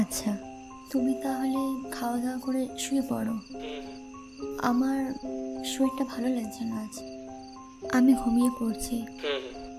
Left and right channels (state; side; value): identical; both; correlation 1.00